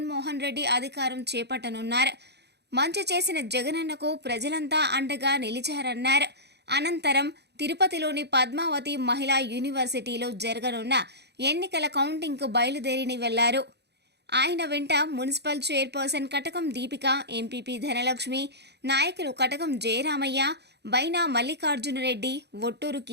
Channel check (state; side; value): late; left; 0.49 ms